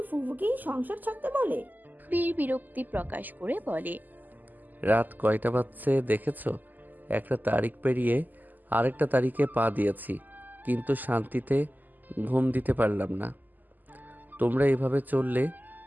ফুফুকেই সংসার ছাড়তে বলে। বীর বিরক্তি প্রকাশ করে বলে, রাত কয়টা বাজছে দেখেছো? একটা তারিখ পেরিয়ে আরেকটা তারিখে পা দিয়েছি, কিন্তু শান্তিতে ঘুম দিতে পারলাম না। তোমরা এভাবে চললে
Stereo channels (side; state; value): left; late; 0.085 ms